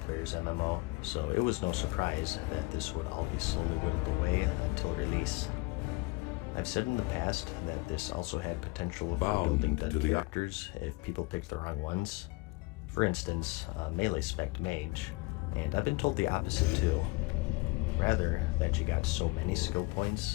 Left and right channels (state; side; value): quieter; right; 24.0 dB